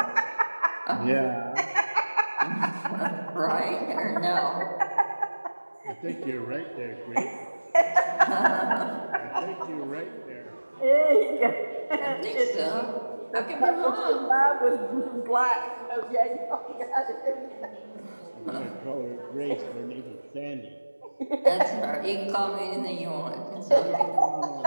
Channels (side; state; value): both; inverted; correlation -1.00